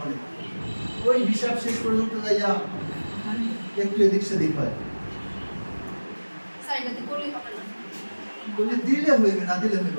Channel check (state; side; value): inverted; both; correlation -1.00